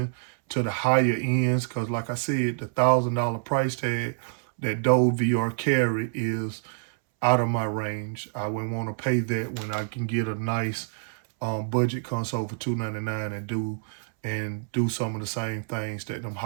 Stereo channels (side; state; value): left; silent; 60 dB below the other